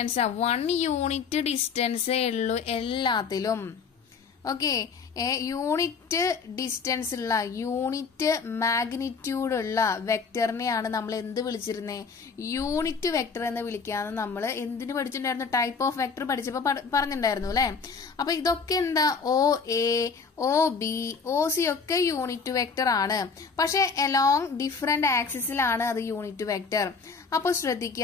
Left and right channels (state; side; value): quieter; right; 5.3 dB